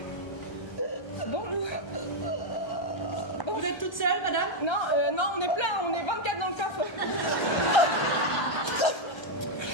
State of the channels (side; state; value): right; late; 1.3 ms